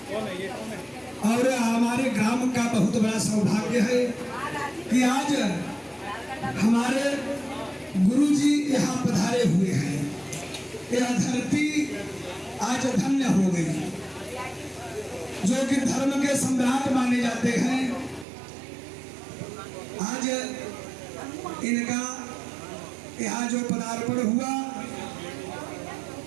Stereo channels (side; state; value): left; drops out; at 18.2 s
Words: और हमारे ग्राम का बहुत बड़ा सौभाग्य है कि आज हमारे गुरु जी यहाँ पधारे हुए हैं। यह धरती आज धन्य हो गई, जो कि धर्म के सम्राट माने जाते हैं। आज इनका यहाँ जो पदार्पण हुआ,